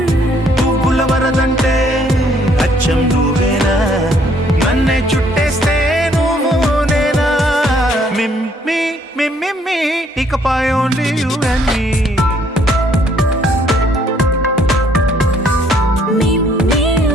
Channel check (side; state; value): both; normal; correlation 0.65